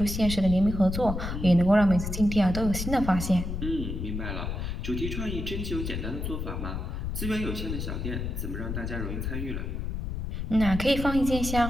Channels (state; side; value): noise; left; rumble, 4 dB below the sound